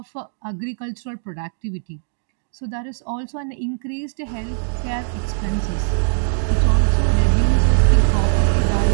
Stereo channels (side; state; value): left; silent; digital silence